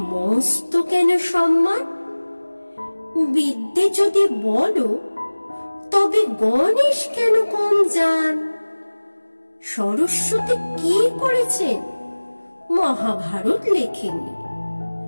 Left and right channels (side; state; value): both; inverted; correlation -1.00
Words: মস্ত কেন সম্মান? বিদ্যে যদি বলো তবে গণেশ কেন কম জান? সরস্বতী কি করেছেন? মহাভারত লেখেননি।